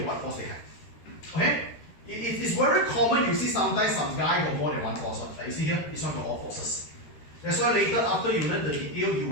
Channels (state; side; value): late; right; 13 ms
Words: what force they have. Okay? It's very common, you see sometimes some guy got more than one force. Like you see here, this one got all forces. That's why later after you learn the detail, you